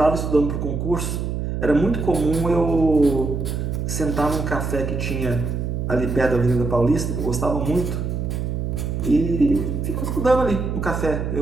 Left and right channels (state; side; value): noise; right; hum, 3 dB below the sound